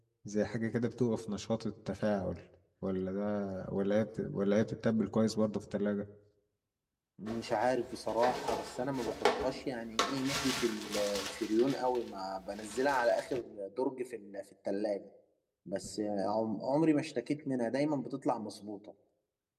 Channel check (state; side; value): identical; both; correlation 1.00